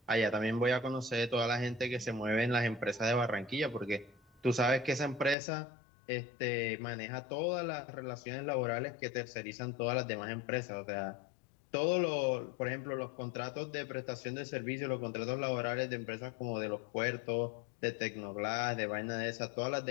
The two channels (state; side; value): drops out; right; at 5.4 s